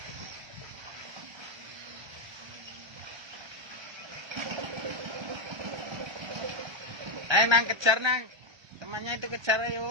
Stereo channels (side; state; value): left; late; 1.3 ms